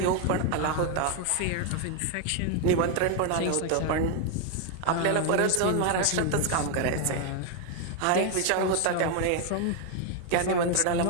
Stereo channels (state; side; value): different; both; correlation 0.01